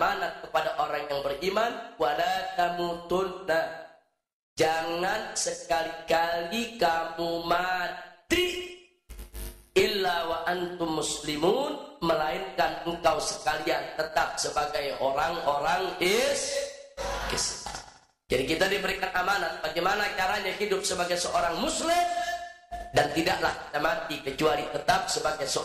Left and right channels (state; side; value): identical; both; correlation 1.00